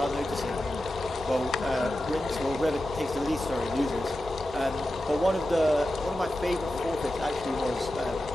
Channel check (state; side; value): normal; both; correlation 0.92